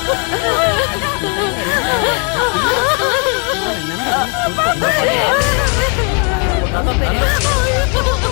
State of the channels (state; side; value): quieter; right; 36.3 dB